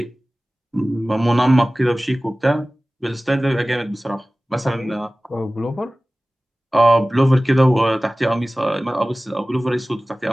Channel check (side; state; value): both; normal; correlation 0.97